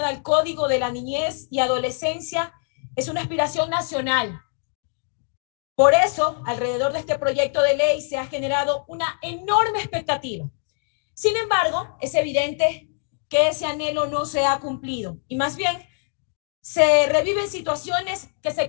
al Código de la Niñez y Adolescencia es una aspiración nacional. Por eso, alrededor de este proyecto de ley se ha generado una enorme expectativa. Sin embargo, es evidente que ese anhelo no se ha cumplido y más bien se reviven situaciones que se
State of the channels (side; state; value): right; silent; 57 dB below the other